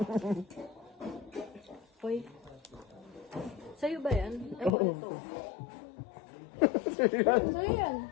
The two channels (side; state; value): right; drops out; at 4.8 s